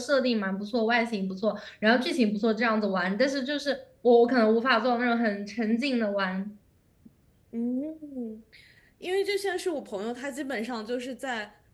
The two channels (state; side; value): identical; both; correlation 1.00